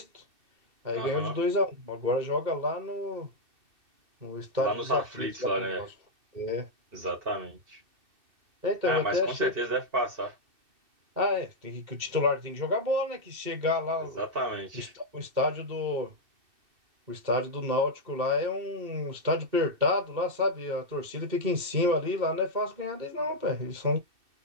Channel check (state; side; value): late; left; 2.6 ms